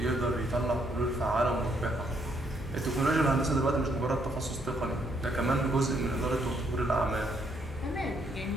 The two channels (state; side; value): normal; both; correlation 0.71